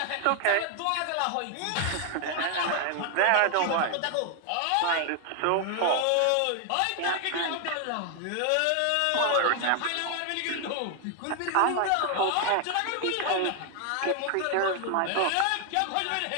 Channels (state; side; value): different; both; correlation 0.00